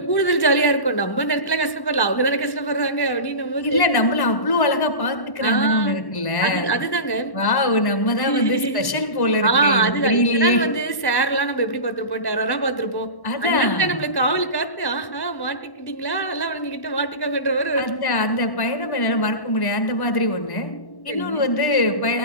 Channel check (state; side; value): late; right; 1.1 ms